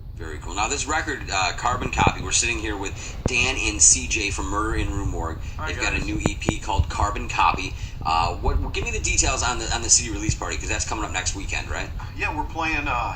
Very cool. Now, this record, Carbon Copy, we're sitting here with Dan and CJ from Murder in Rue Morgue. They've got a new EP called Carbon Copy. Give me the details on the CD release party, because that's coming up next weekend, right? Yeah, we're playing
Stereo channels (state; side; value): identical; both; correlation 1.00